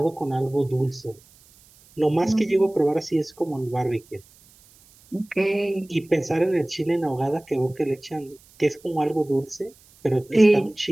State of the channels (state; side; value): noise; right; hiss, 28 dB below the sound